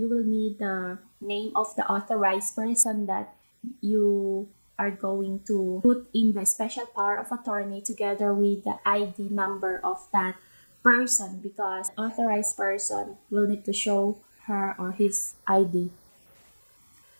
will need the name of the authorized person that you are going to put in the special power of attorney together with the ID number of that person, because authorized person will need to show her or his ID.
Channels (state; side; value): inverted; both; correlation -1.00